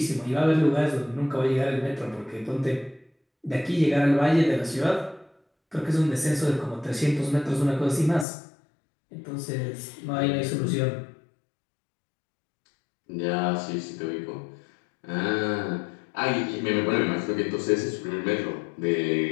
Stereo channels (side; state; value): right; drops out; at 8.2 s